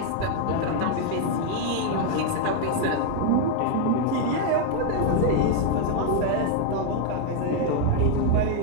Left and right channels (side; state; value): both; different; correlation 0.01